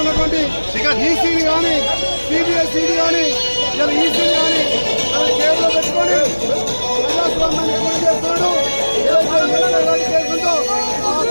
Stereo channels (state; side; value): inverted; both; correlation -1.00